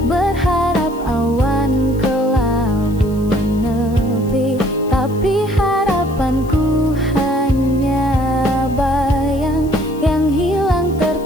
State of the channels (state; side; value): noise; left; hiss, 24 dB below the sound